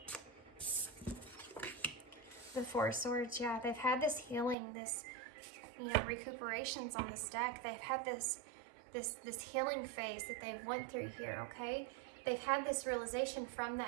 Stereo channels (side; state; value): left; drops out; at 4.5 s